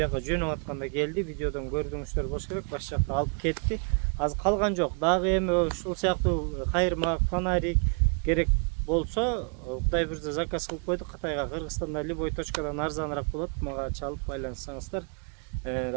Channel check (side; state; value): left; quieter; 39.6 dB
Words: жөнөп атканда келди, видеодон көрдүңүздөр болуш керек. Баш жакта алып кетти. Азыр калган жок. Дагы эми ушул сыяктуу кайырмак, фонарик керек болсо, Кудай буйруса заказ кылып койдук. Кытайга, Кыргызстанда любой точкадан арзаныраак болот. Мага чалып байланыссаңыздар,